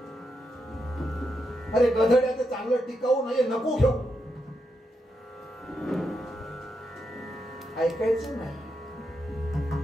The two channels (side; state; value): both; normal; correlation 0.83